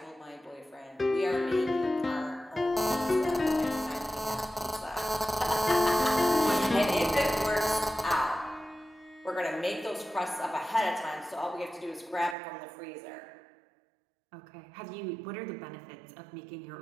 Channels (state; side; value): drops out; left; at 12.4 s